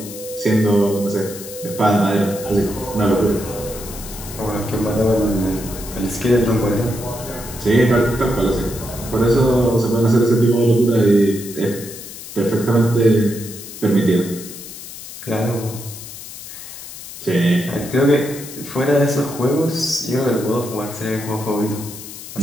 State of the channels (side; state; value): left; noise; hiss, 13 dB below the sound